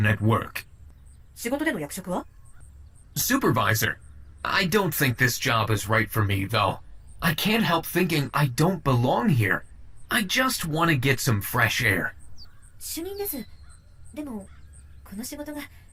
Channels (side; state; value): both; identical; correlation 1.00